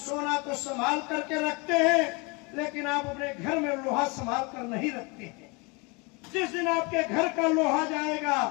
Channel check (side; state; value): right; quieter; 28.9 dB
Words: तो संभाल करके रखते हैं, लेकिन आप अपने घर में लोहा संभाल कर नहीं रखते हैं। जिस दिन आपके घर का लोहा जाएगा